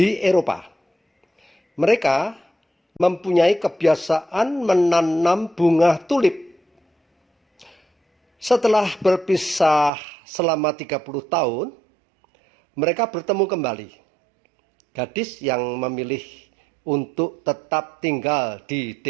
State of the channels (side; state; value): left; drops out; at 9.9 s